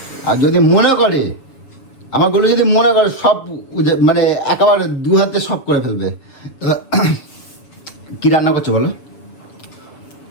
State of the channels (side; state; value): right; late; 7.2 ms